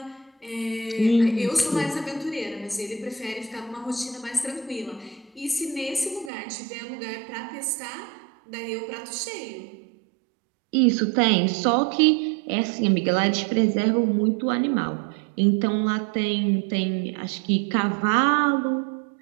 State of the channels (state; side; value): drops out; left; at 6.3 s